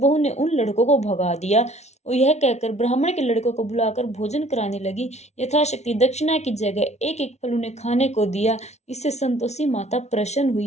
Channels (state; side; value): late; right; 0.32 ms